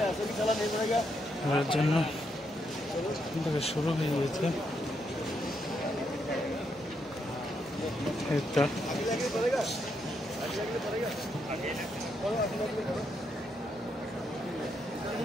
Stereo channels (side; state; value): both; normal; correlation 0.79